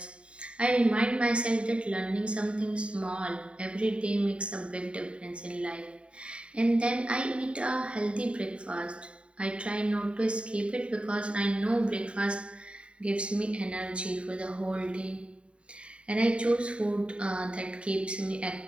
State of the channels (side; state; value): left; late; 0.058 ms